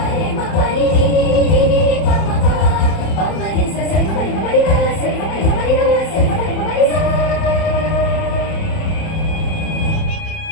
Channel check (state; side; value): late; right; 30 ms